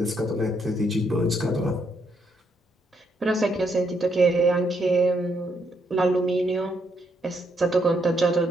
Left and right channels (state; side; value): normal; both; correlation 0.75